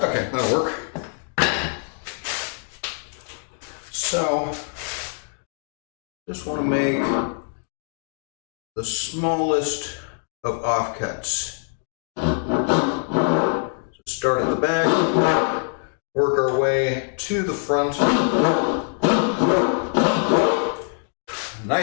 Okay, that'll work. So, just want to make the smallest of offcuts. So start at the back, work our way to the front.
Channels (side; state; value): right; silent; 57 dB below the other